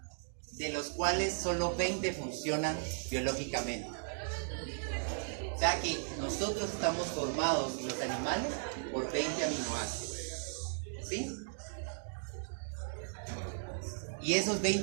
de los cuales solo 20 funcionan biológicamente. O sea que nosotros estamos formados, y los animales, por 20 aminoácidos, ¿sí? Y esos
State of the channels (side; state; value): left; silent; digital silence